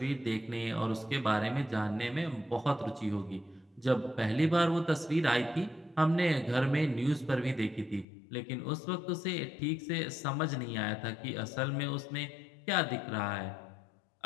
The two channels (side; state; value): right; drops out; at 8.1 s